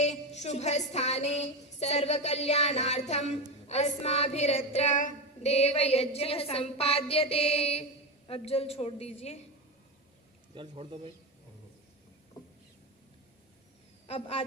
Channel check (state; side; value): normal; both; correlation 0.16